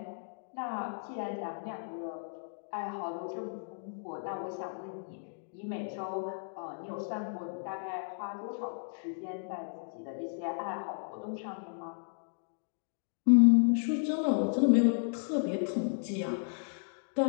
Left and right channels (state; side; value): silent; right; digital silence